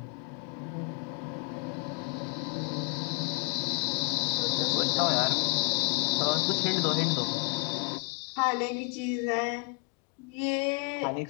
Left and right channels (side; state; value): right; quieter; 35.9 dB